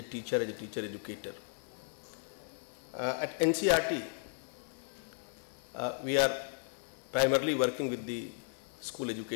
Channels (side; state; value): right; silent; 54 dB below the other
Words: teacher educator. At NCERT, we are primarily working with the school